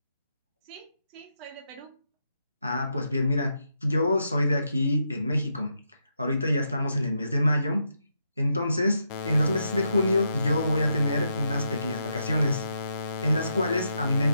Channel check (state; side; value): inverted; both; correlation -0.81